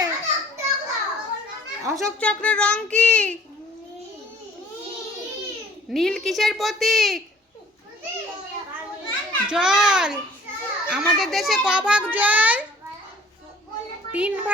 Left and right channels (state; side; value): normal; both; correlation 0.53